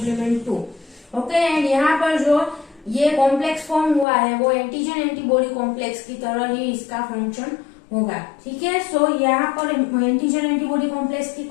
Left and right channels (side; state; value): right; drops out; at 4.0 s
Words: 2. Okay, and यहाँ पर जो ये कॉम्प्लेक्स फॉर्म हुआ है वो एंटीजन एंटीबॉडी कॉम्प्लेक्स की तरह ही इसका फंक्शन होगा, ठीक है. सो यहाँ पर एंटीजन एंटीबॉडी कॉम्प्लेक्स की